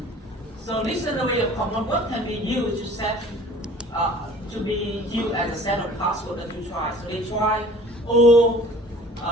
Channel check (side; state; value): both; normal; correlation 0.48